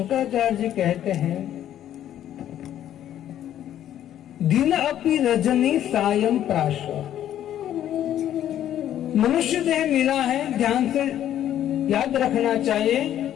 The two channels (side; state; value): right; quieter; 11.3 dB